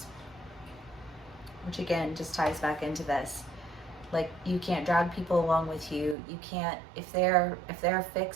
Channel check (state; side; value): drops out; left; at 6.2 s